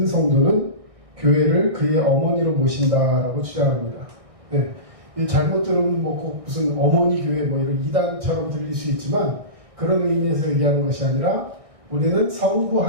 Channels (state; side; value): late; left; 1.6 ms